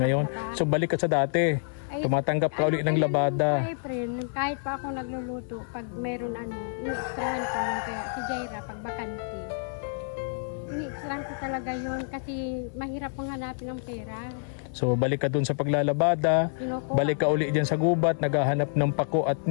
So balik ka sa dati. Tumatanggap ka ulit ng labada. Kahit pa ako nagluluto, pag meron ini-extrahan ko yun. Kaya si Jaira, pag bakante, ini-extrahan ko talaga yun kasi mahirap pang hanapin ng pera. So balik ka dun sa paglalabada, balik ka uli dyan sa gubat, naghahanap ng pako at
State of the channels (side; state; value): right; silent; 59 dB below the other